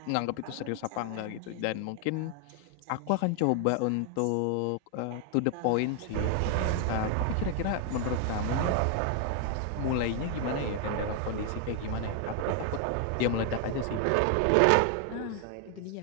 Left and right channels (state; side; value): different; both; correlation 0.00